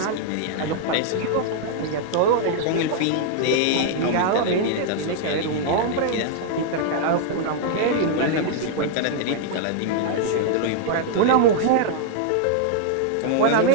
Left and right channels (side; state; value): both; different; correlation -0.01